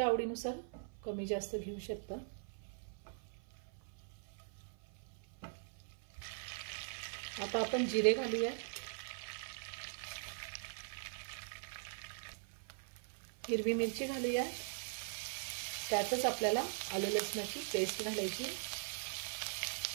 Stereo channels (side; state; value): left; silent; 50 dB below the other